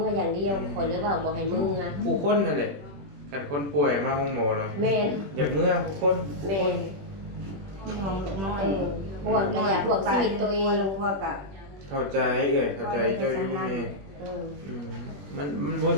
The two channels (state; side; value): late; left; 21 ms